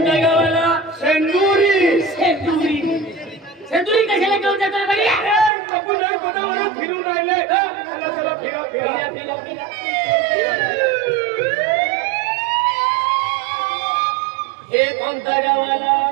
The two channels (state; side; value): drops out; left; at 5.5 s